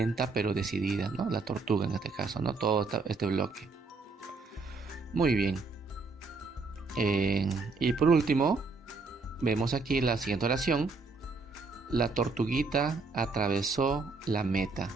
pero decidida, ¿no? La tortuga en este caso, ¿no? Todo este bloque. Muy bien. Y por último, vemos aquí la siguiente oración. La tortuguita atravesó la meta,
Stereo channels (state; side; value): quieter; left; 4.0 dB